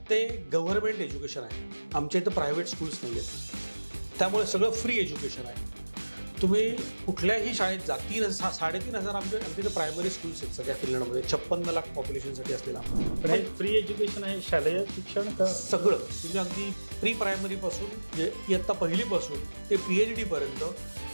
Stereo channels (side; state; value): both; inverted; correlation -1.00